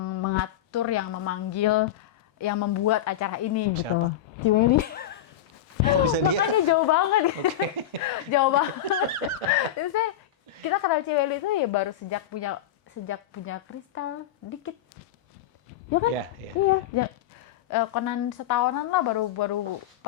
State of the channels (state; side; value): quieter; right; 11.0 dB